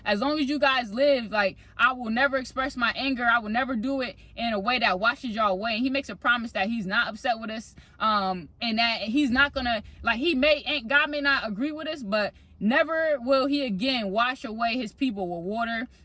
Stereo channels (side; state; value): both; identical; correlation 1.00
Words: as long as you guys live, like, I will never express my anger. I will never do it in a way that washes y'all away. And he makes a promise that he's not upset with us, and that he's not gonna, like, God may not agree with us, but never will he again wash away his people with water,